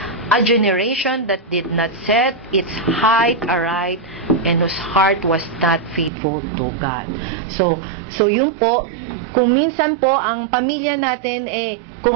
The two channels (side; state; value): left; drops out; at 6.1 s